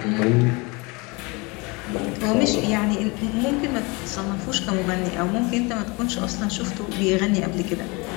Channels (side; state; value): right; quieter; 27.4 dB